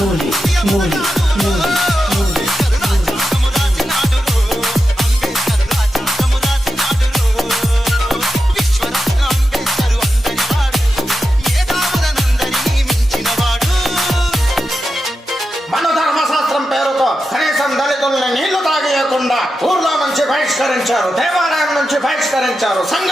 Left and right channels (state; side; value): normal; both; correlation 0.90